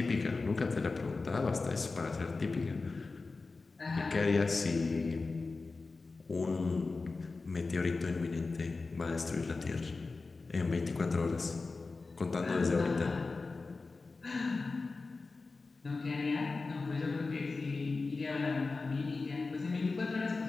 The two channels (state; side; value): quieter; right; 3.9 dB